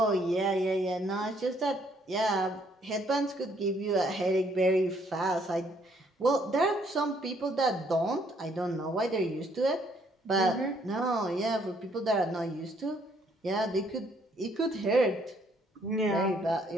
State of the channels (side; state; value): both; normal; correlation 0.67